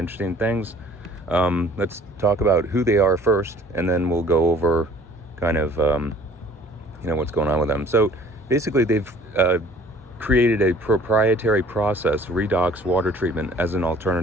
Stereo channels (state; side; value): normal; both; correlation 0.52